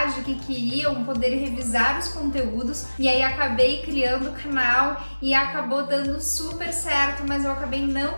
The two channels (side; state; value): both; inverted; correlation -1.00